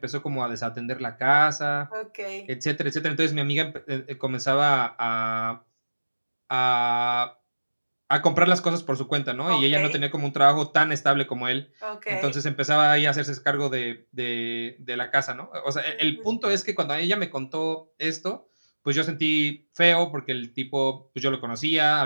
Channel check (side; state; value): both; inverted; correlation -1.00